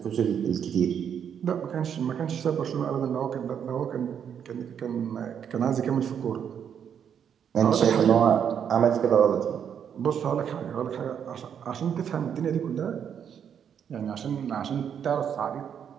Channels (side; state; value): left; quieter; 8.2 dB